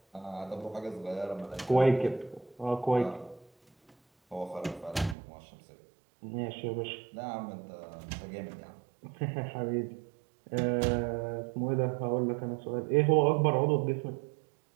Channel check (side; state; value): left; drops out; at 5.2 s